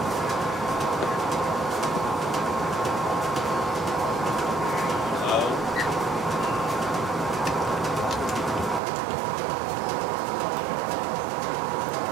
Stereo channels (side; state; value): left; drops out; at 8.8 s